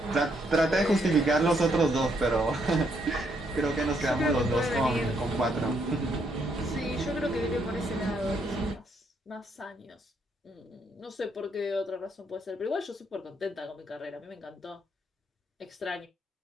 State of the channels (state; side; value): normal; both; correlation 0.74